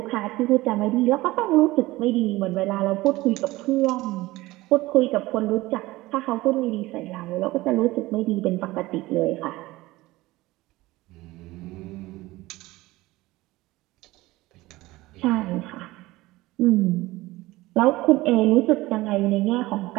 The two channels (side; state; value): left; quieter; 19.0 dB